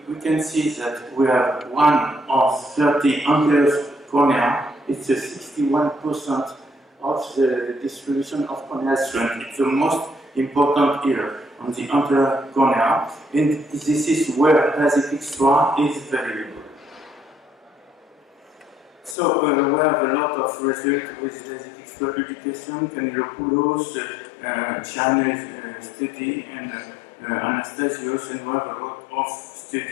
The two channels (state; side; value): drops out; right; at 19.2 s